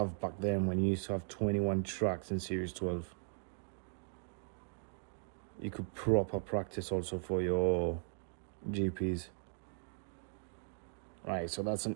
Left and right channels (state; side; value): silent; left; digital silence